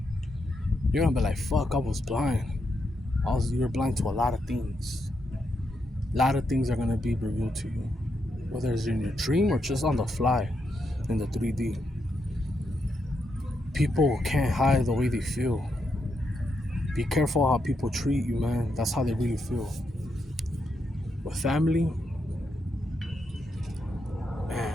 You're gonna be like, fuck, I was blind. You're blind to a lot of things. A lot of things are gonna be revealed to you. Whether it's in your dream or just on the fly in the 3D. People can't hide the way they feel. Be careful how people treat you, man. That's how they really feel. With family,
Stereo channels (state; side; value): normal; both; correlation 0.81